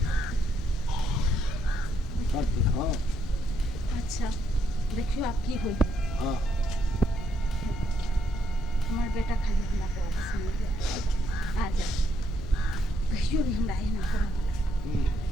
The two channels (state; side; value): noise; left; rumble, 9 dB below the sound